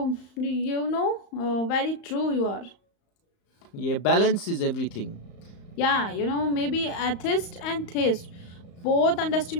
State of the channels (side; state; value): right; late; 35 ms